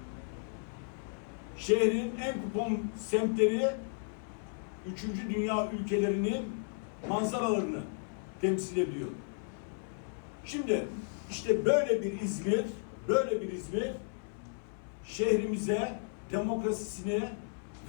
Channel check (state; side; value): silent; right; 55 dB below the other